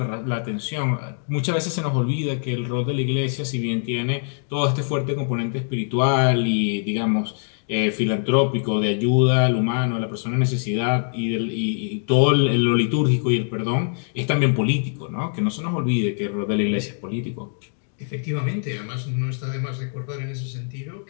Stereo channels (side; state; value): right; silent; digital silence